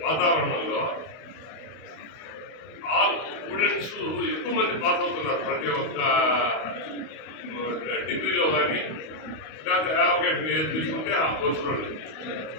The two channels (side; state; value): right; late; 31 ms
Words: వాతావరణంలో ఆల్ స్టూడెంట్స్ ఎక్కువ మంది పాస్ అవుతున్నారు. ప్రతి ఒక్క డిగ్రీలో కానీ లేకపోతే యావిగేషన్ ఏది తీసుకుంటే ఆ కోర్సులో